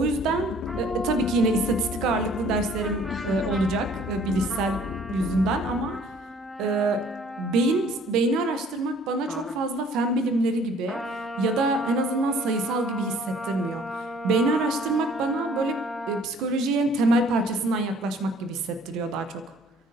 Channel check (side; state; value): both; normal; correlation 0.56